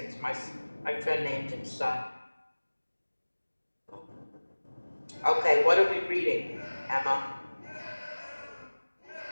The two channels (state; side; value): inverted; both; correlation -1.00